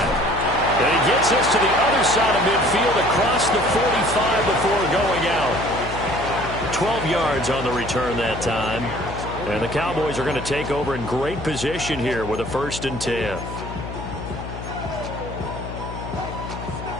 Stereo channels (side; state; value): left; noise; hum, 9 dB below the sound